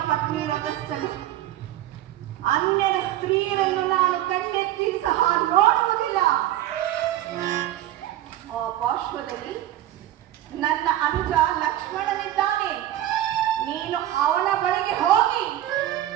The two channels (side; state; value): left; quieter; 13.4 dB